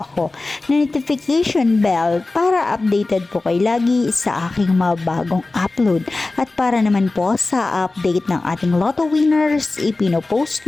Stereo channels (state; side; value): quieter; right; 3.3 dB